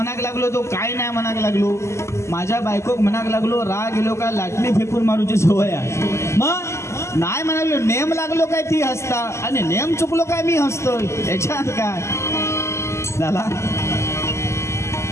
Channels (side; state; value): right; late; 0.13 ms